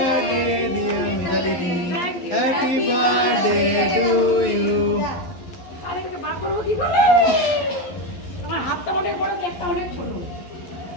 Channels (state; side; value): late; right; 11 ms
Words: dear Mitali. Happy birthday to you. আরে এটাকে বার করবো কি করে তোমার হাতটা অনেক বড় একটা অনেক ছোট